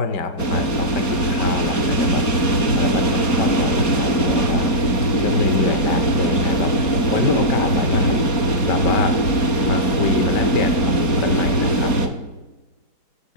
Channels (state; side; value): late; right; 4.3 ms